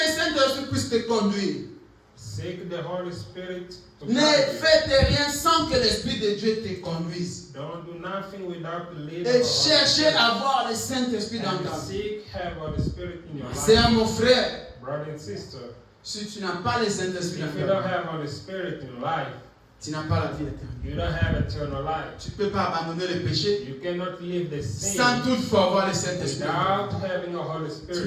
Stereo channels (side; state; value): both; identical; correlation 1.00